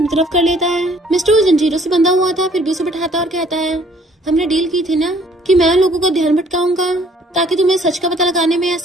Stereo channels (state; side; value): normal; both; correlation 0.59